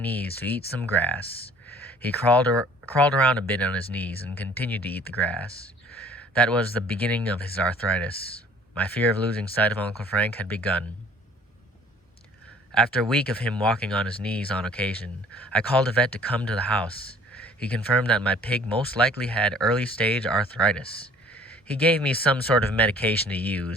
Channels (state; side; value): normal; both; correlation 0.53